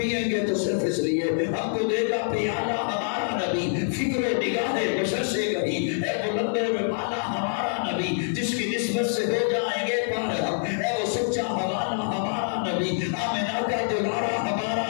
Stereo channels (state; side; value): silent; right; digital silence